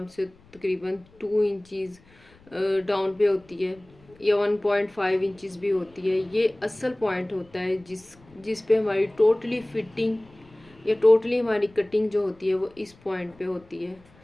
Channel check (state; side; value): noise; left; rumble, 28 dB below the sound